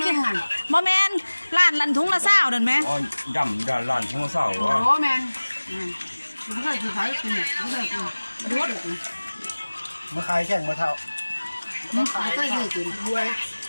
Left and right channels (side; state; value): both; inverted; correlation -1.00